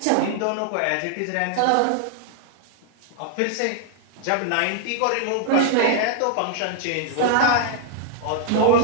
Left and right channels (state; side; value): different; both; correlation 0.00